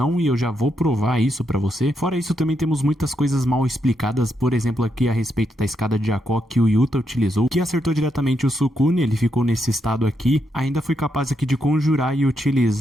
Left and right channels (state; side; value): normal; both; correlation 0.80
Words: e eu já vou provar isso pra você. Fora isso, também temos muitas coisas mal explicadas, por exemplo, aqui a respeito da escada de Jaco que o Yuta utilizou, que acertou diretamente o Sukuna, ele ficou nesse estado aqui. Ainda foi capaz aqui de conjurar e